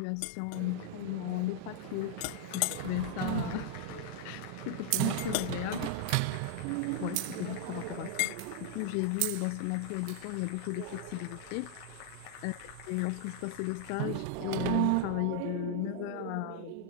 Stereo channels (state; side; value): different; both; correlation 0.00